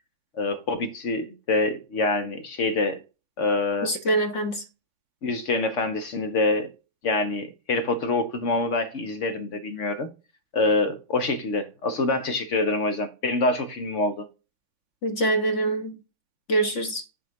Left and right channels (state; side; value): late; right; 3.5 ms